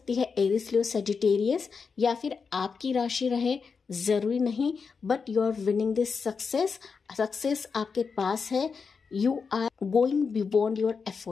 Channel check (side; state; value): right; quieter; 5.4 dB